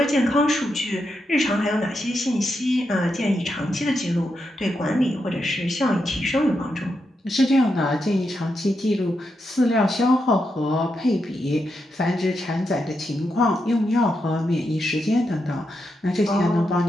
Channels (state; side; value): normal; both; correlation 0.84